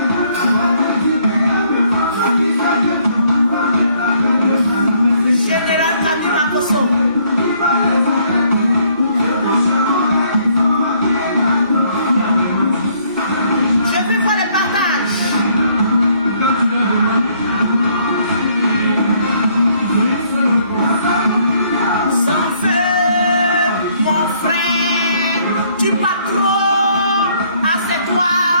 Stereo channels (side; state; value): both; inverted; correlation -0.66